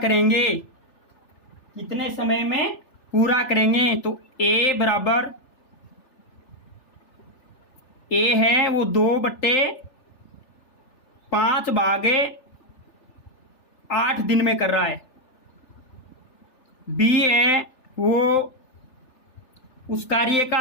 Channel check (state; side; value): late; right; 3.4 ms